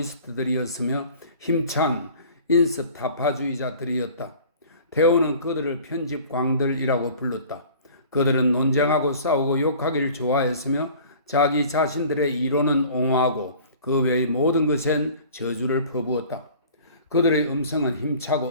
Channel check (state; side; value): inverted; both; correlation -0.46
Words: 힘찬 인습 타파주의자들이었다. 테오는 그들을 편집광들이라고 불렀다. 그들은 논쟁하고 싸우고 욕하기를 좋아했으며 자기 자신들의 이론은 옹호하고 그 외의 모든 것엔 저주를 퍼부었다. 그들의 음성은 힘차고